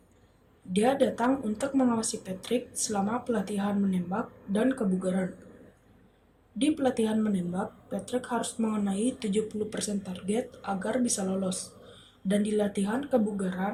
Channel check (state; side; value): identical; both; correlation 1.00